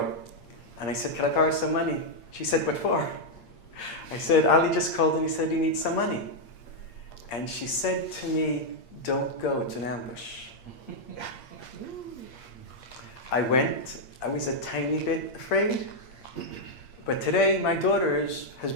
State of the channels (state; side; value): late; right; 8.6 ms